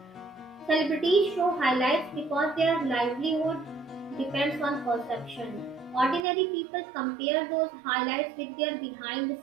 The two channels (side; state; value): left; drops out; at 6.2 s